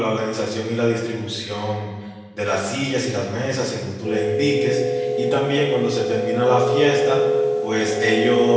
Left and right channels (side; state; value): both; identical; correlation 1.00